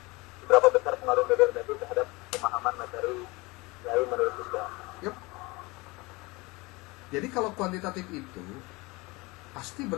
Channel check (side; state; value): right; quieter; 24.2 dB